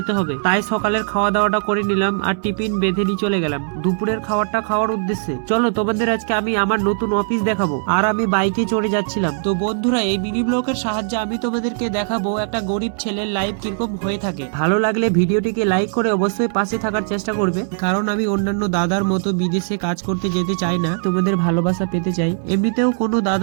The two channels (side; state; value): left; silent; digital silence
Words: হবে, তাই সকালের খাওয়া দাওয়াটা করে নিলাম আর টিফিন বেঁধে নিয়ে চলে গেলাম দুপুরের খাবারটা খাওয়ার উদ্দেশ্যে। চলো তোমাদের আজকে আমি আমার নতুন অফিস দেখাবো। আর আমি বাইকে চড়ে যাচ্ছিলাম। তো বন্ধুরা এই মিনি ব্লগের সাহায্যে আমি তোমাদেরকে দেখাবো একটা গরিব ছেলের লাইফ কিরকম হয়ে থাকে। ভালো লাগলে ভিডিওটিকে লাইক করে অবশ্যই পাশে থাকার চেষ্টা করবে, কারণ আমি অন্যান্য দাদার মতো বিদেশে কাজ করতে যেতে চাই না, তোমাদের ভালোবাসা পেতে চাই। এমনিতেও কোনো